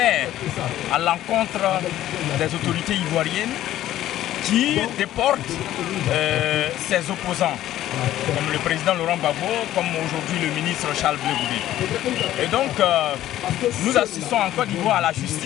à l'encontre des autorités ivoiriennes qui déportent ses opposants, comme le président Laurent Gbagbo, comme aujourd'hui le ministre Charles Blé Goudé. Et donc, nous assistons en Côte d'Ivoire à la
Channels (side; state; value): right; quieter; 13.4 dB